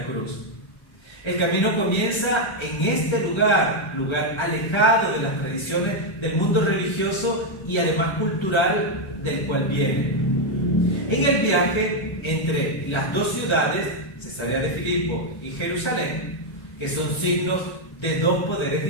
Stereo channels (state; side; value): late; right; 1.3 ms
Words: cruz. El camino comienza en este lugar alejado de las tradiciones del mundo religioso y además cultural del cual viene. En el viaje entre las dos ciudades, Cesarea de Filipo y Jerusalén, que son signos de dos poderes